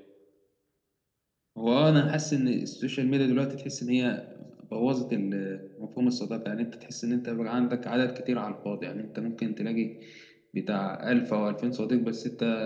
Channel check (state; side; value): identical; both; correlation 1.00